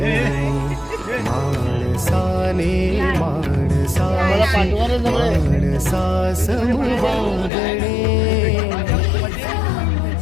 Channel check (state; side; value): drops out; right; at 7.5 s